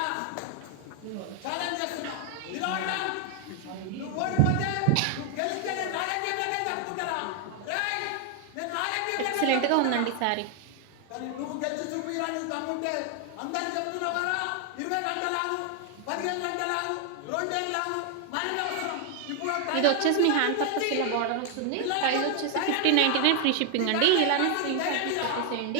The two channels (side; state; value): both; different; correlation 0.00